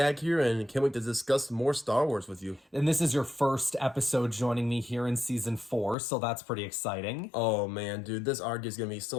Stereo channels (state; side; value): drops out; right; at 6.0 s